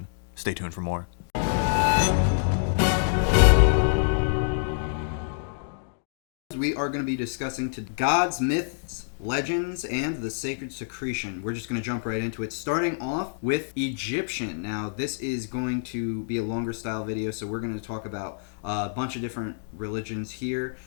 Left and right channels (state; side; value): silent; right; digital silence